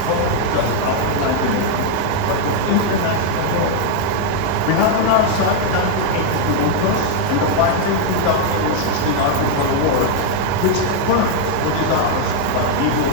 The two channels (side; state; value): both; different; correlation 0.01